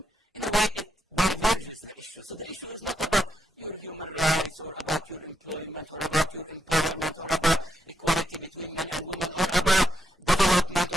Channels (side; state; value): both; normal; correlation 0.81